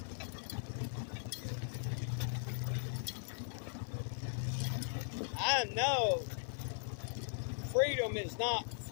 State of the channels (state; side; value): silent; right; 52 dB below the other